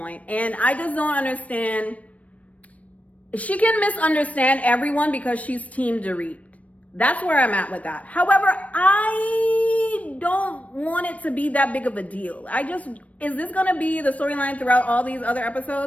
and I just don't understand. She can misunderstand everyone because she's Team Dorit. That's where I'm at with that. However, I don't want it to be that big of a deal. Is this going to be the storyline throughout all these other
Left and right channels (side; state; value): right; late; 0.067 ms